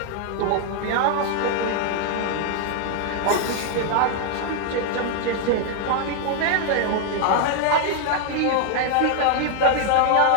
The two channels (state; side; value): different; both; correlation 0.00